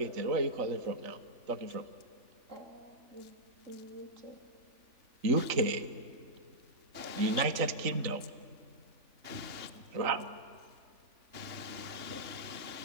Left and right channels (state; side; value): late; left; 3.4 ms